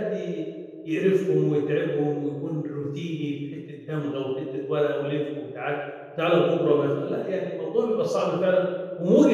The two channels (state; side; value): identical; both; correlation 1.00